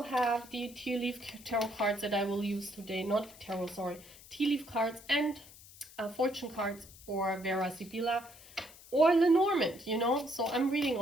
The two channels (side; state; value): left; noise; hiss, 20 dB below the sound